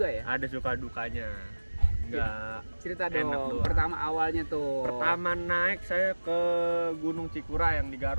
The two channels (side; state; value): both; inverted; correlation -1.00